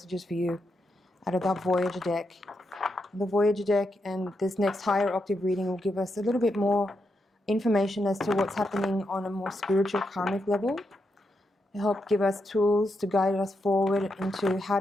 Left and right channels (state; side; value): normal; both; correlation 0.83